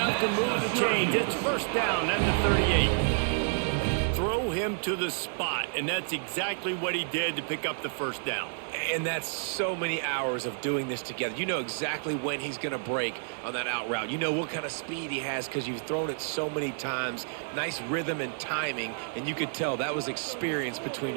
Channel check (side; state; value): left; silent; digital silence